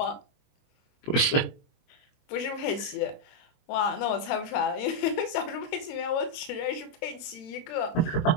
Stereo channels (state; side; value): late; right; 22 ms